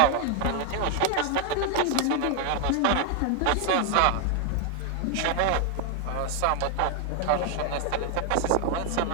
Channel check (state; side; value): different; both; correlation 0.00